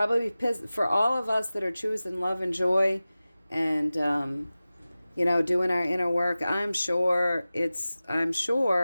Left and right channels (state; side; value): inverted; both; correlation -0.96